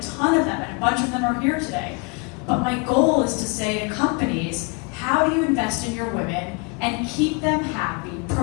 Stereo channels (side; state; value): right; quieter; 31.2 dB